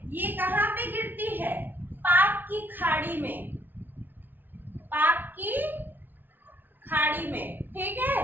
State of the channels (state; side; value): late; left; 0.091 ms